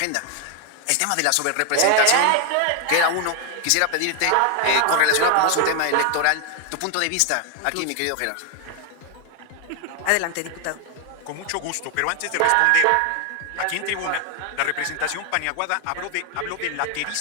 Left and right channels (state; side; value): different; both; correlation 0.00